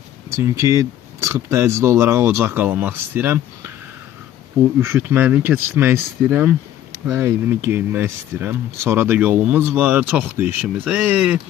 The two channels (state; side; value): quieter; right; 11.9 dB